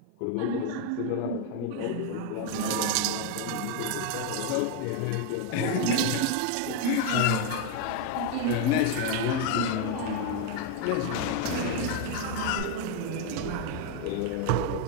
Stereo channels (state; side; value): different; both; correlation 0.01